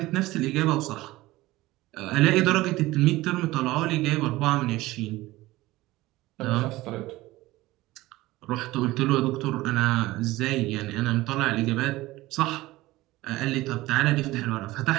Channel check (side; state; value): left; quieter; 18.4 dB